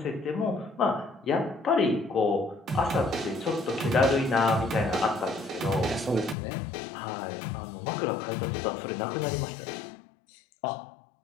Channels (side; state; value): right; drops out; at 6.4 s